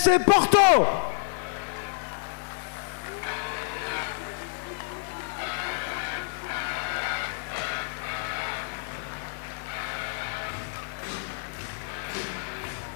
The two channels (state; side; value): silent; right; 59 dB below the other